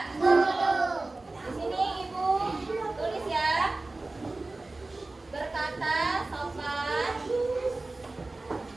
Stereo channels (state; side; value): quieter; left; 3.1 dB